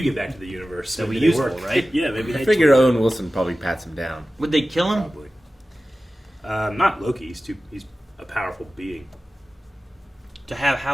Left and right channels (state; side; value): normal; both; correlation 0.95